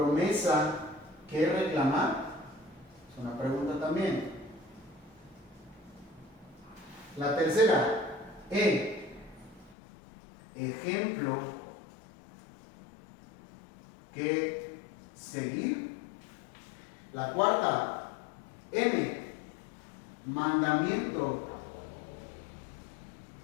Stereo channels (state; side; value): drops out; right; at 9.8 s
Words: que reclamar, es una pregunta también. La tercera, ejemplo que seguir. La cuarta, mandamiento